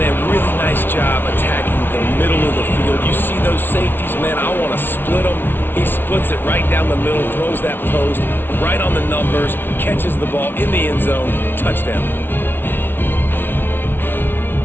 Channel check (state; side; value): late; right; 0.10 ms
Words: really nice job attacking the middle of the field. You see those safeties, man, I want to split them. He splits it right down the middle, throws that post, right on the numbers, catches the ball in the end zone, touchdown.